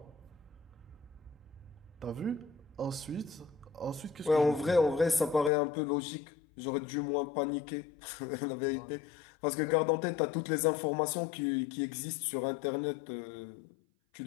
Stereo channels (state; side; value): drops out; right; at 5.5 s